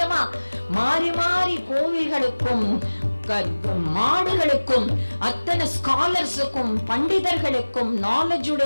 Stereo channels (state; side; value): inverted; both; correlation -1.00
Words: மாறி மாறி கோவில்களுக்கும் மாடுகளுக்கும் அத்தனை ஸ்காலர்ஸுக்கும் பண்டிதர்களுக்கும் நாலேஜ்